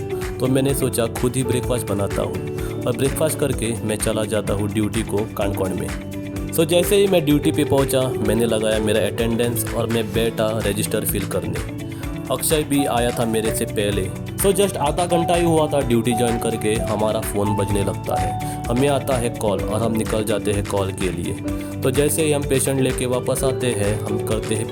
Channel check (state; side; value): identical; both; correlation 1.00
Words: तो मैंने सोचा खुद ही ब्रेकफास्ट बनाता हूँ और ब्रेकफास्ट करके मैं चला जाता हूँ ड्यूटी को कानकोण में। सो जैसे ही मैं ड्यूटी पे पहुँचा मैंने लगाया मेरा अटेंडेंस और मैं बैठा रजिस्टर फिल करने। अक्षय भी आया था मेरे से पहले। सो जस्ट आधा घंटा ही हुआ था ड्यूटी ज्वाइन करके हमारा फ़ोन बजने लगता है, हमें आता है कॉल और हम निकल जाते हैं कॉल के लिए। तो जैसे ही हम पेशेंट लेके वापस आते हैं हम करते हैं